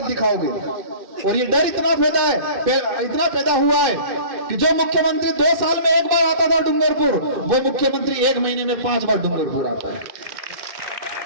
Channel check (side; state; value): left; late; 2.6 ms